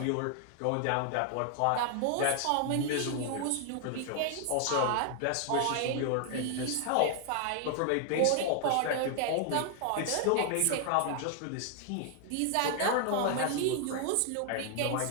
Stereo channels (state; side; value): different; both; correlation 0.00